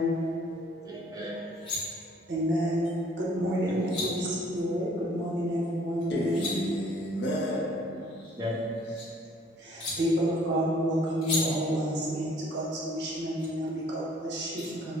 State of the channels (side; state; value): both; normal; correlation 0.58